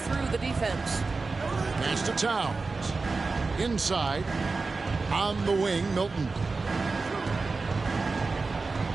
the defense. Pass to Towns. Inside. On the wing, Milton.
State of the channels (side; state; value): left; quieter; 4.0 dB